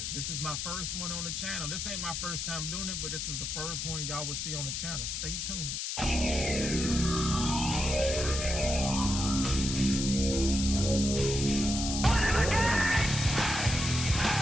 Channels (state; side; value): noise; left; hiss, 3 dB below the sound